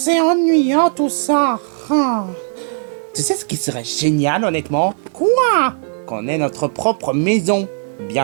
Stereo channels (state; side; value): silent; left; 60 dB below the other